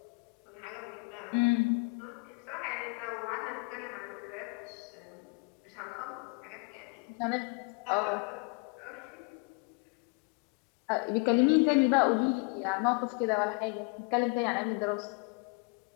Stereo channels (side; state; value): right; quieter; 30.5 dB